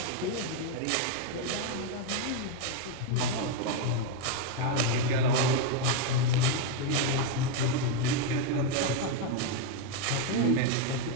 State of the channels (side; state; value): both; different; correlation 0.01